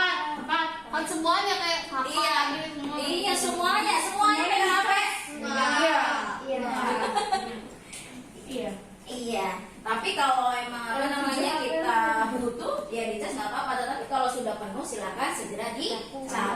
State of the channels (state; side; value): identical; both; correlation 1.00